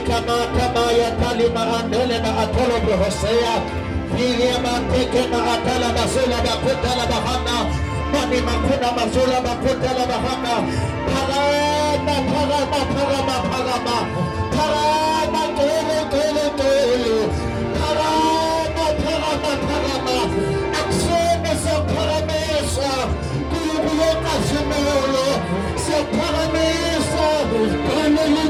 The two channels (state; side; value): identical; both; correlation 1.00